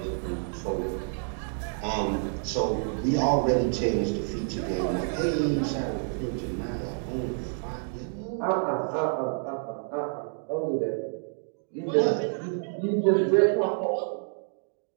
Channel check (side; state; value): left; silent; 58 dB below the other